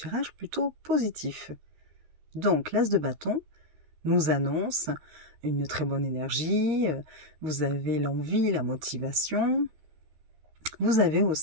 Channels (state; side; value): late; left; 13 ms